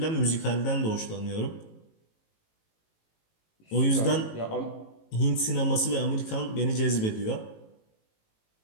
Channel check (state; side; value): late; right; 18 ms